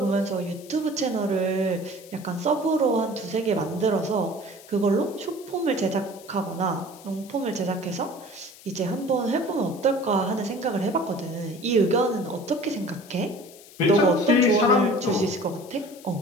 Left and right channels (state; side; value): noise; left; hiss, 21 dB below the sound